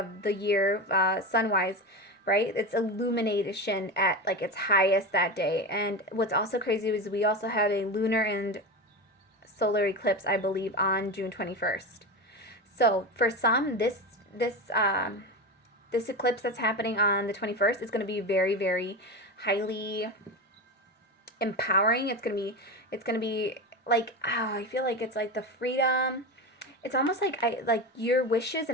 the year, sun-wise. Right? It's illumination at like its highest that day. And what's also crazy is we also have a lunar and solar eclipse, I believe, on June 21st. So for some, this eclipse that's happening on the 21st is going to be very, very highly empowering. It's going to be like, I feel like it's like the freedom. It's almost like your wishes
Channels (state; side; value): normal; both; correlation 0.22